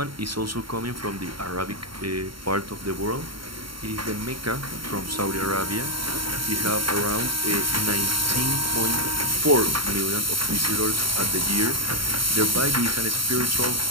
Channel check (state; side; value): late; left; 0.73 ms